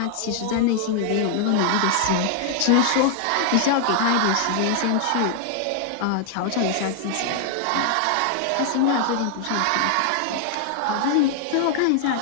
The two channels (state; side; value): different; both; correlation 0.00